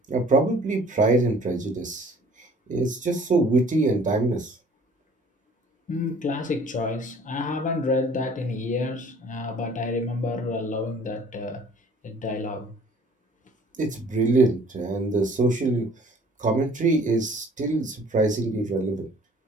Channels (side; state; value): both; normal; correlation 0.53